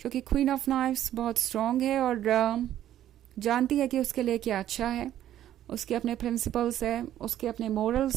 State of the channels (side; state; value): left; quieter; 12.0 dB